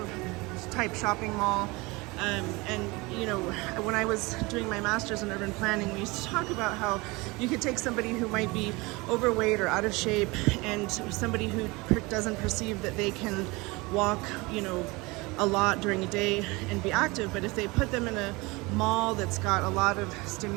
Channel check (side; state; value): left; quieter; 24.3 dB